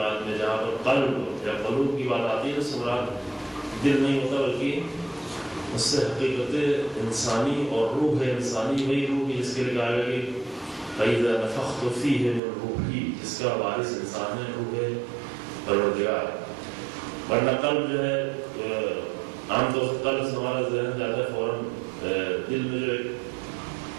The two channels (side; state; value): left; drops out; at 12.4 s